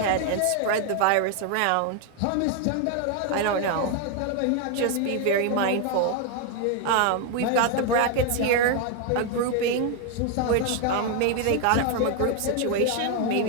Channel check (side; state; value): both; different; correlation 0.01